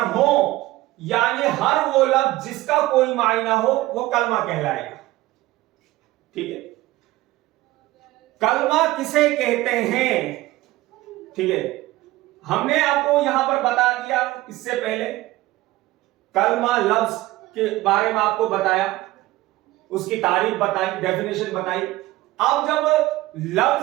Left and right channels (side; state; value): left; quieter; 17.7 dB